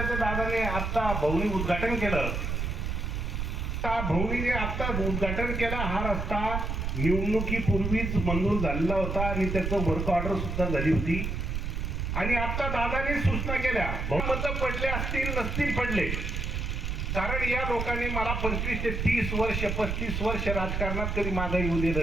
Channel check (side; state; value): right; noise; rumble, 2 dB below the sound